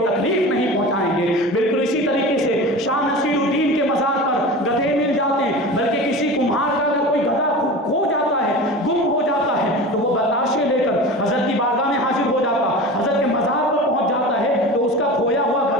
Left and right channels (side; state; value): both; normal; correlation 0.33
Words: تکلیف نہیں پہنچائیں گے۔ بالکل اسی طریقے سے شاہ نصیر الدین کے مزار پر گدھے مل جاتے ہیں، بلکہ کسی کمہار کا اگر کوئی گدھا کھو جاتا ہے، گم ہو جاتا ہے تو وہ بتاشے لے کر حضرت کی بارگاہ میں حاضر ہو جاتا، حضرت کے مزار پر پہنچ جاتا ہے تو اس کا کھویا ہوا